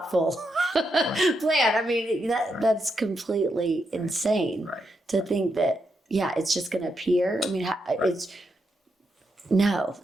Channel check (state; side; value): normal; both; correlation 0.82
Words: plan. I mean, that's completely insane to think that. Yeah, it's just going to appear. I mean, it's no.